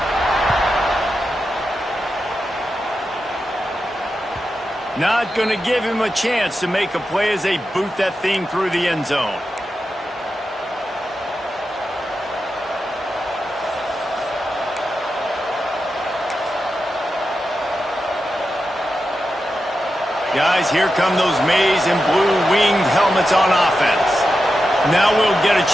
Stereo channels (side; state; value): both; normal; correlation 0.90